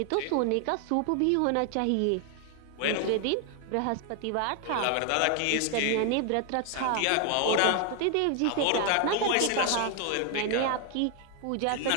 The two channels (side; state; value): both; different; correlation 0.01